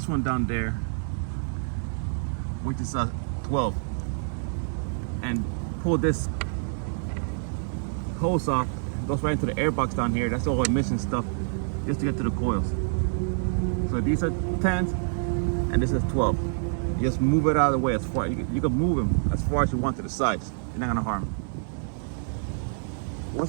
one down there, which is a 12. And pull this hose off. It goes right into the air box down here. That's all emission stuff, just to get to the coils. So these are 10s, and this is 12. You just move it out of the way as far. You can move them as far as you want to the sides. You're not gonna harm.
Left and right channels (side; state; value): left; silent; digital silence